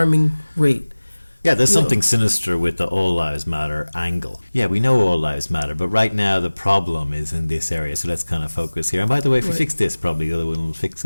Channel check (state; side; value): inverted; both; correlation -1.00